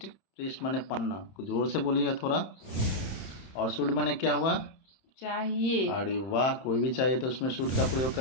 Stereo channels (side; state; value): right; late; 31 ms